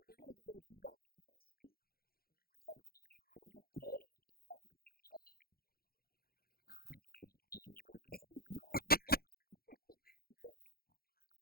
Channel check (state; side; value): late; right; 0.44 ms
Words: gonna go over to you now, Mike. Diets, man. Like, what have you done in the past? What have you tried? I've tried eating everything. Well, we go